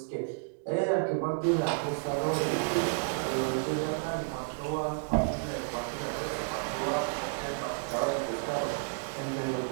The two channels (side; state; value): left; silent; digital silence